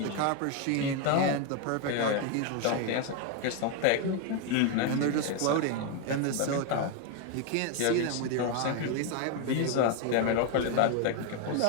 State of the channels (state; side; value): different; both; correlation 0.01